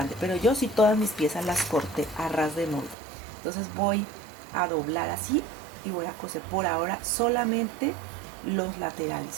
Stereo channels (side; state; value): left; drops out; at 3.0 s